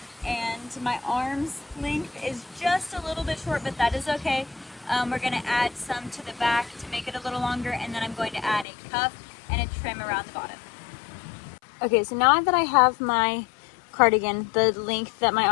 and my arm's length is just a little bit short, but that is okay. We're going to add some to the back to make it a little longer, and then I'm going to add a cuff and a trim around the bottom. Okay, so now that I have my cardigan the length that my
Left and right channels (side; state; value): right; drops out; at 8.7 s